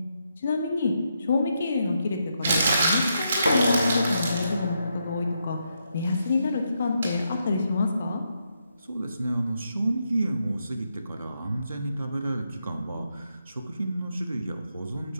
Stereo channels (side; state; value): both; inverted; correlation -0.81